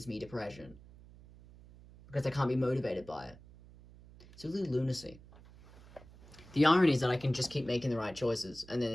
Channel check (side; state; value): right; noise; hum, 21 dB below the sound